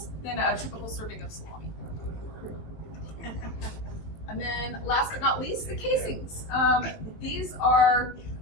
than a typical serving of salami. And then last but not least, the casings. These are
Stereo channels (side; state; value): right; late; 19 ms